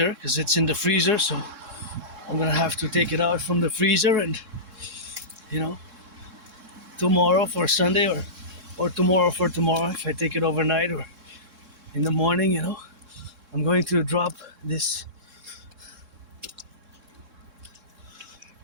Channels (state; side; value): late; left; 3.6 ms